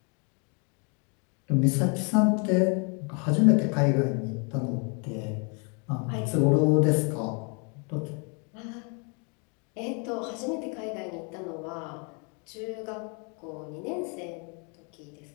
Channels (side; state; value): right; quieter; 35.9 dB